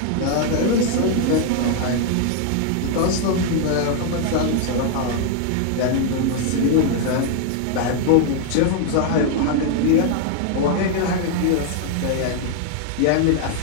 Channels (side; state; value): both; different; correlation 0.00